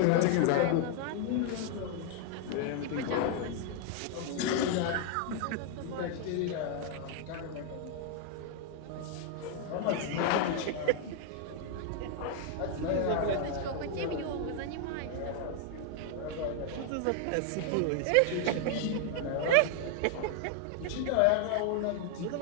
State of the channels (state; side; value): different; both; correlation 0.00